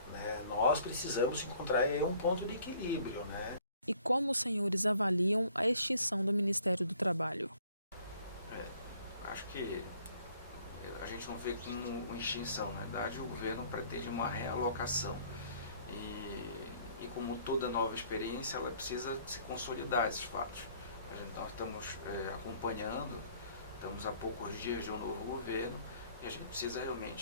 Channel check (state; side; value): inverted; both; correlation -0.59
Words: né? Nós precisamos encontrar aí um ponto de equilíbrio, né? E como os senhores avaliam a extinção do Ministério do Trabalho? Acho que a gente não vê como uma extinção. Na verdade, o governo pretende uma realocação. E como toda nova experiência, ela precisa se consolidar esses fatos. Nós estamos acompanhando, estamos há poucos dias de um novo governo, e a gente precisa